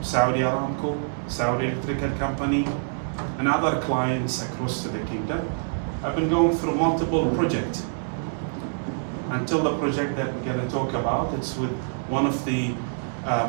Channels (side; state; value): left; silent; digital silence